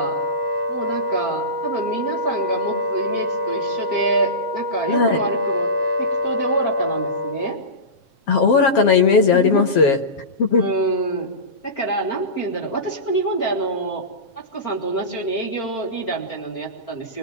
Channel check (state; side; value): late; right; 7.4 ms